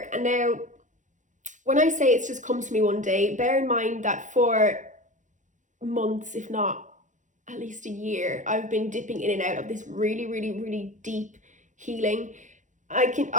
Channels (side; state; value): left; late; 0.36 ms